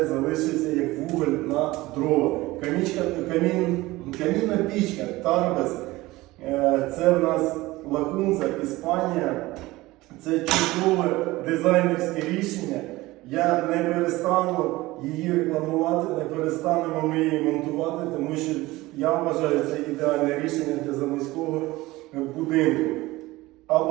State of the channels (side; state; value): left; quieter; 19.3 dB